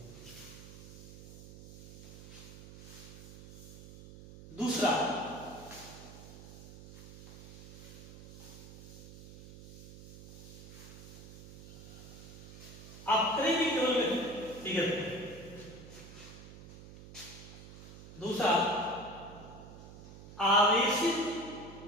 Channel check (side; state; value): right; noise; hum, 15 dB below the sound